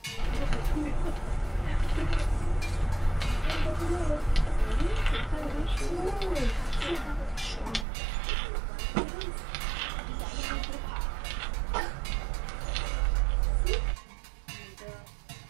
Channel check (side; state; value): left; drops out; at 7.9 s